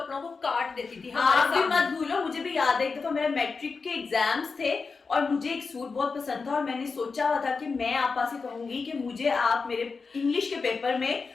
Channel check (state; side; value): quieter; right; 4.7 dB